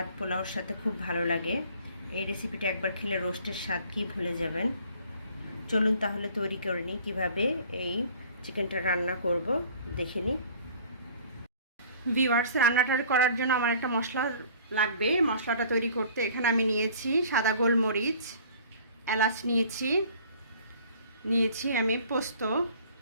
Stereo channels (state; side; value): inverted; both; correlation -0.51